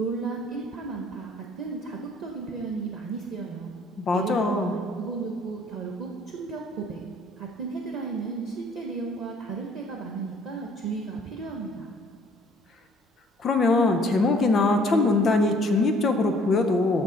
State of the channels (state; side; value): normal; both; correlation 0.58